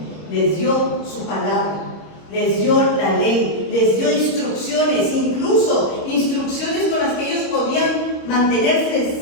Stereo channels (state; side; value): late; right; 26 ms